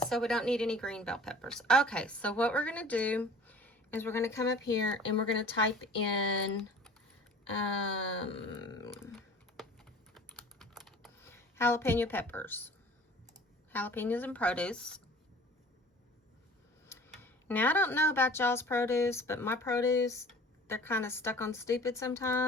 so we don't need any green bell peppers. Okay, so what we're going to do is we're going to come up here and we're going to type in jalapeno peppers. Jalapenos and produce. Now, I don't know about y'all's produce, but my produce, they're kind of stuck on stupid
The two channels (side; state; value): both; normal; correlation 0.46